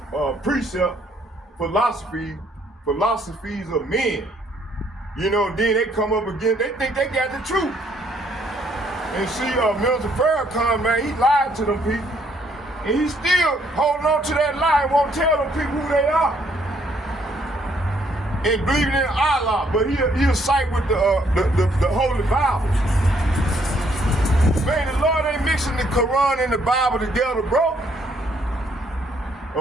precept, philosophies of men. You know, then they come up again, they think they got the truth. And see, Minister Farrakhan, man, he lied to them people. And he's still holding on to that lie and won't tell them people who they are. And believing in Allah, but he'll side with the Holy Bible. Man, the Lord ain't mixing the Quran and the Bible together, bro.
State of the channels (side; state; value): both; normal; correlation 0.68